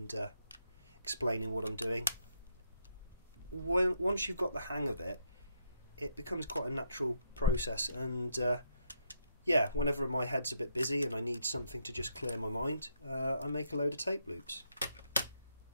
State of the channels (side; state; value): both; inverted; correlation -0.75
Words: explaining what I'm doing, once you've got the hang of it, it becomes quite a natural process. And yeah, whenever my head's a bit busy and I need something to just clear my mind, I make a load of tape loops.